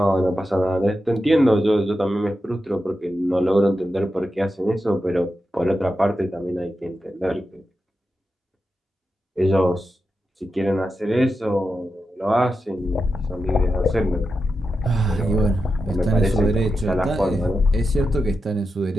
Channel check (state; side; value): normal; both; correlation 0.89